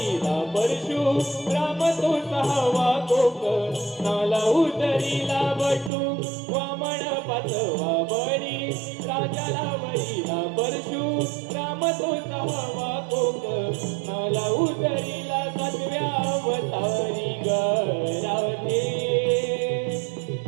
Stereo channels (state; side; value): drops out; left; at 5.9 s